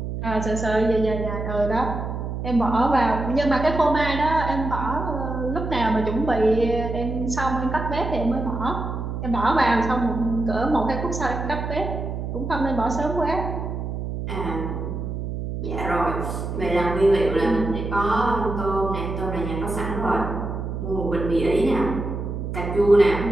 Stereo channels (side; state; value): right; noise; hum, 5 dB below the sound